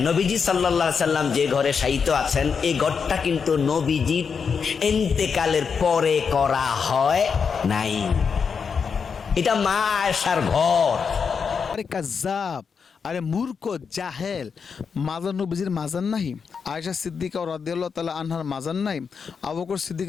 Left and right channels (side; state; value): right; quieter; 6.0 dB